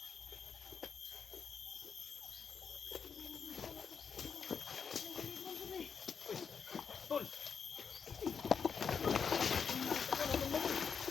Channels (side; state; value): right; quieter; 6.4 dB